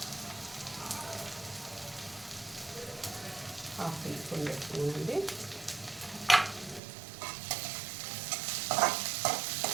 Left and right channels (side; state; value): left; drops out; at 6.8 s